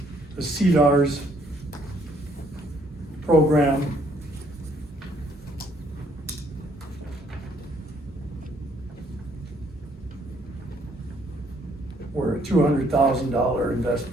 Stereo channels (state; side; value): normal; both; correlation 0.66